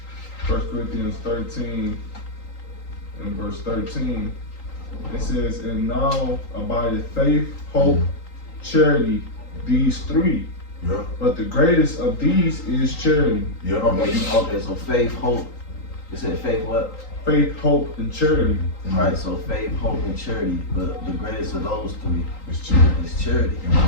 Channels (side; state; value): right; late; 3.8 ms